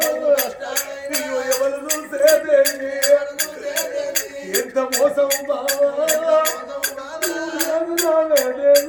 ఎవరు చూసే దేవి ఎంత మోసం బావా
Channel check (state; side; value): identical; both; correlation 1.00